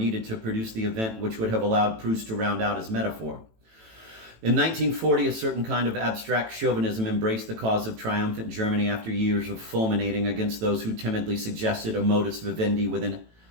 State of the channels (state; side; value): late; left; 18 ms